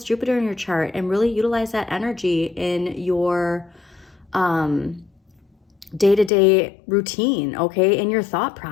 Jupiter in your chart and really utilize that energy in your day-to-day routine, okay, in your thought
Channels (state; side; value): drops out; right; at 6.3 s